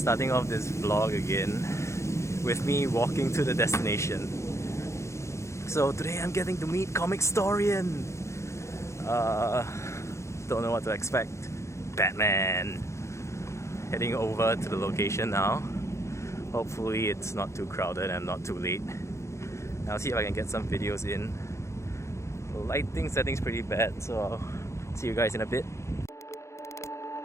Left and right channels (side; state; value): right; late; 0.14 ms